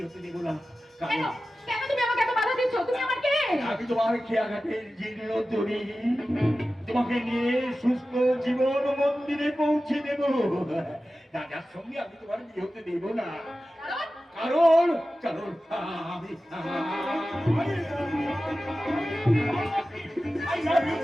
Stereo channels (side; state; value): both; normal; correlation 0.94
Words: হতে দেব না। কেন কেন তুমি আমাকে এত বাধা দিচ্ছ? তুমি আমার কে? আমি তোমার খেয়াঘাটের জীর্ণ তরি, তোমাকে নিয়ে সুস্থ জীবন মন্দিরে পৌঁছে দেব। রাজার সঙ্গে আমি তোমার বিয়ে হতে দেব না। কারণ কারণ আমি